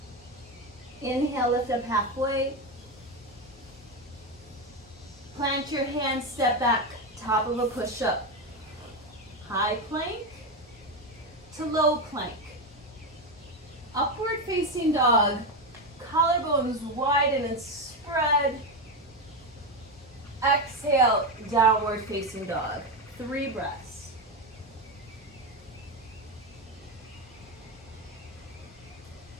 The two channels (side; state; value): both; normal; correlation 0.12